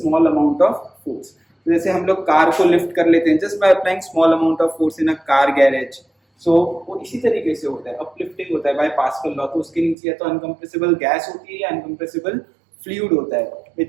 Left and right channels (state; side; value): drops out; left; at 10.0 s